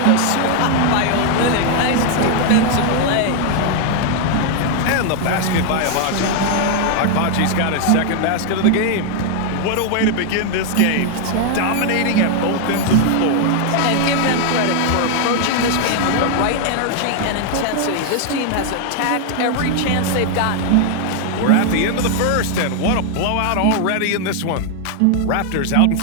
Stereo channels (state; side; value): different; both; correlation 0.00